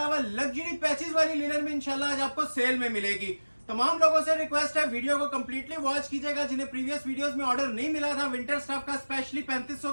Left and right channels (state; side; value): inverted; both; correlation -1.00